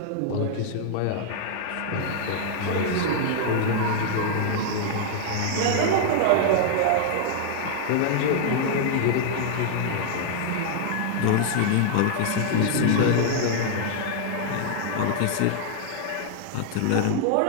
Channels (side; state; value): both; different; correlation -0.01